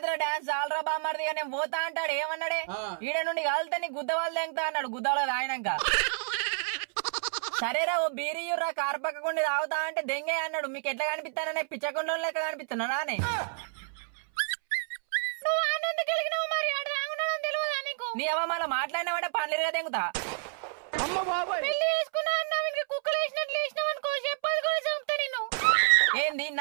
డాన్స్ ఆల్రా బామ్మర్ది నేను పోతా అంటాడు. ఏమన్నాడే, ఈడ నుండి కాలితే నీ గుద్ద వాళ్ళు తెంగుతా అన్నాడు. గుద్దలో రాయనాక సరేరా ఓ బీరియుర్రా కారు పక్కకుండా తాగుతా అంటే దెంగే అన్నాడు. మీకు ఎట్లా కనిపిస్తాననే పిచ్చకుండా లెక్క కనిపిస్తున్నా నానే. నీ అవ్వ మళ్ళీ మాట్లాడినావంటే పనులుగా తెంగుతా. ఏంది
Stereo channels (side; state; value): left; silent; 58 dB below the other